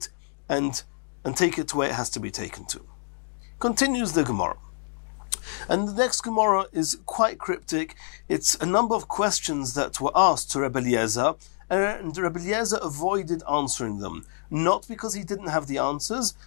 and take it to where it has to be taken to. Continues the Gemara. And the next Gemara is quite cryptic. It's a number of questions that were asked to Rabbi Eliezer, and Rabbi Eliezer avoided answering them. Not because he didn't have the answers,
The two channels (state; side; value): silent; right; digital silence